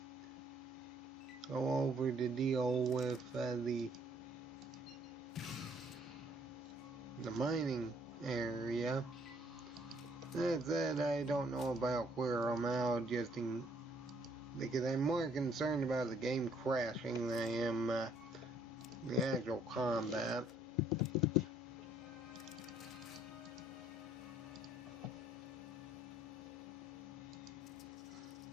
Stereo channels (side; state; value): both; normal; correlation 0.64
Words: go over to deal with the mining area. That said, I don't know about where I'm out because I'm more concerned about the game crashing than I am the actual combat.